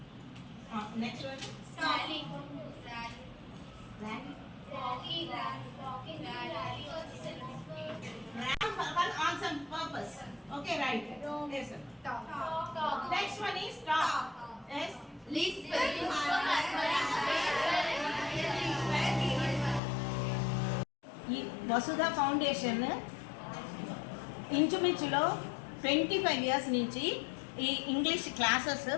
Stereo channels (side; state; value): right; drops out; at 19.8 s